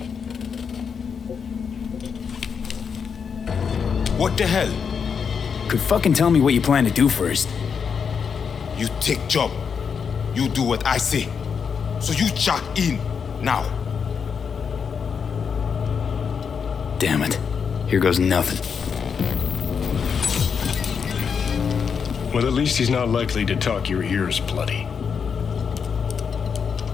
What the hell? Could fucking tell me what you plan to do first. You take job. You do what I say. So you check in now. Damn it. Here goes nothing. Well, at least he's not likely to talk your ears bloody.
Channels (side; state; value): right; quieter; 6.4 dB